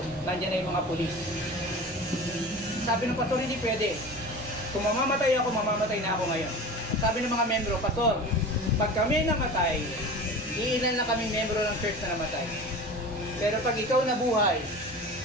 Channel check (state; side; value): normal; both; correlation 0.34